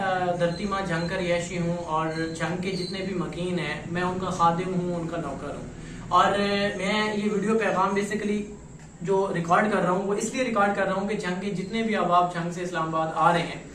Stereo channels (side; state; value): both; identical; correlation 1.00